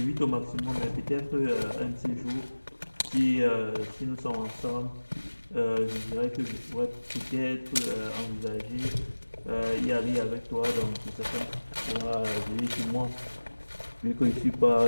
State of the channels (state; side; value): inverted; both; correlation -1.00